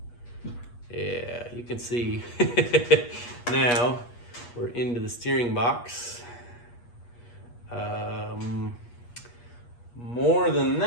Yeah, you can see now we're into the steering box. More than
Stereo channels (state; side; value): late; right; 8.4 ms